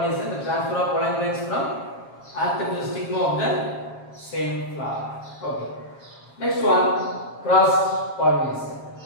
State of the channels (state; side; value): late; right; 7.4 ms